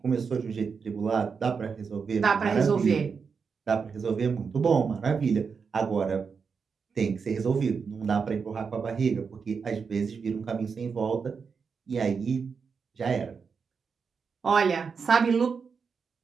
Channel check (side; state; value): left; quieter; 5.7 dB